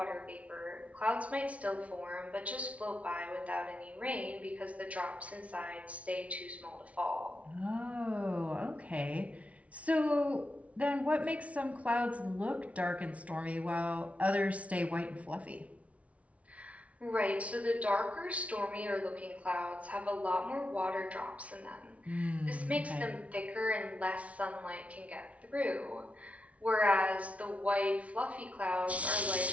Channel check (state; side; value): late; left; 0.065 ms